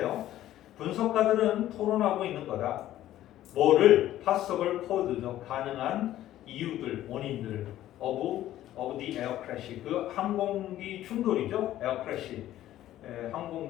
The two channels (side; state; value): right; quieter; 13.4 dB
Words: 분석가들은 토론하고 있는 거다. 뭐를 possible cause죠. 가능한 이유들, 원인들 of of the air crash. 그 항공기 충돌이죠. air crash.